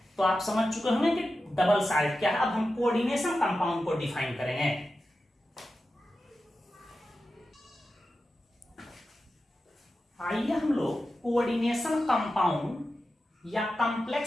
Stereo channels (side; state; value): both; normal; correlation 0.92